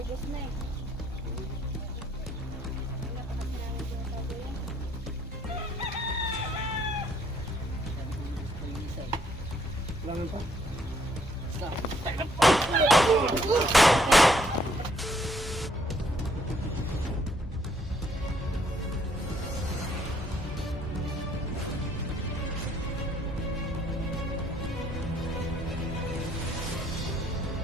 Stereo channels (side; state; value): both; normal; correlation 0.67